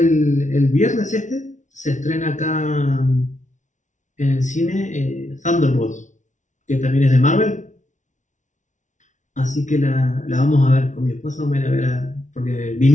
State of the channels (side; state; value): right; late; 0.36 ms